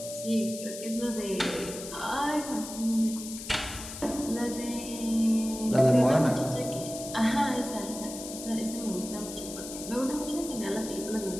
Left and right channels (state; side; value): noise; left; hiss, 10 dB below the sound